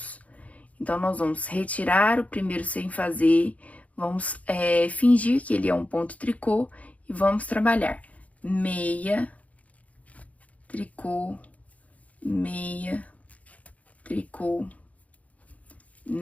Então, nós vamos retirar o primeiro sem fazer, vamos fingir que ele é um ponto tricô e vamos trabalhar meia, tricô, meia, tricô,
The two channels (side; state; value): right; late; 0.069 ms